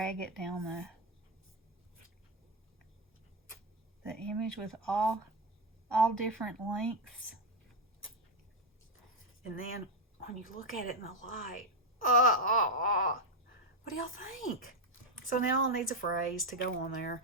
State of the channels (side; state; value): both; normal; correlation 0.06